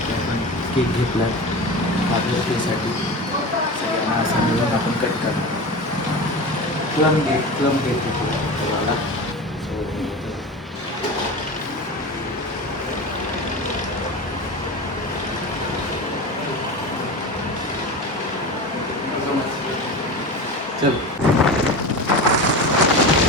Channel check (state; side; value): normal; both; correlation 0.28